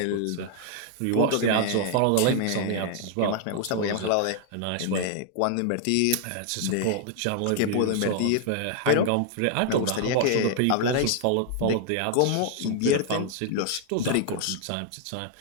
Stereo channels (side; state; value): both; different; correlation 0.00